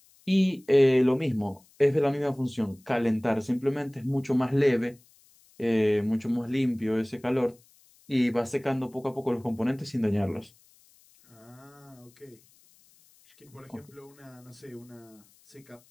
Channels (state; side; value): noise; left; hiss, 30 dB below the sound